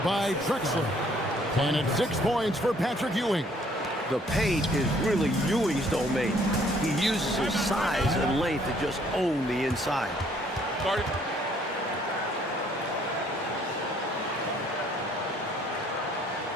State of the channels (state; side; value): normal; both; correlation 0.63